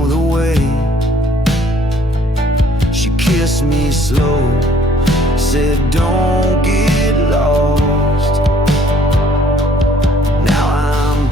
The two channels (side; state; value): both; normal; correlation 0.60